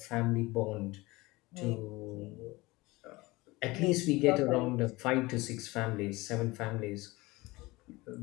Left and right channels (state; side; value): quieter; right; 21.5 dB